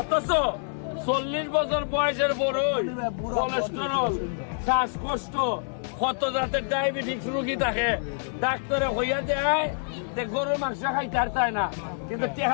40 বছর বয়সের বড়ই কোলেস্টেরল শ্বাসকষ্ট কত জাতের ডায়াবেটিস রোগী থাকে ডাক্তারে হইয়া দেয় যে গরুর মাংস খাইতে আর চায় না কিন্তু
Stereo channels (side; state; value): right; silent; digital silence